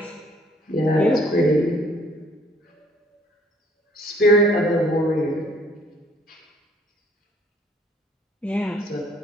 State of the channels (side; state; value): both; normal; correlation 0.61